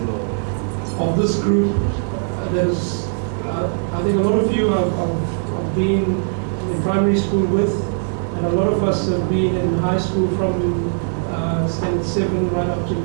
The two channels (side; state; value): left; silent; digital silence